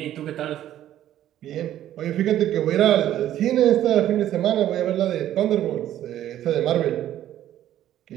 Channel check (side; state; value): left; quieter; 12.2 dB